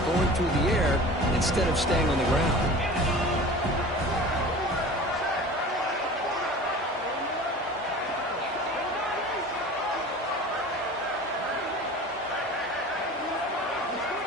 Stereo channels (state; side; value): normal; both; correlation 0.39